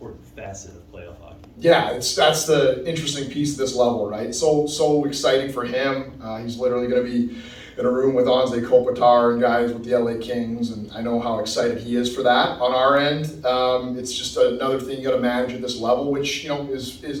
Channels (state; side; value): identical; both; correlation 1.00